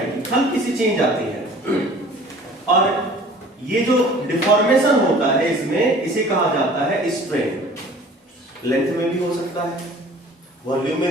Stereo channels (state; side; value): normal; both; correlation 0.48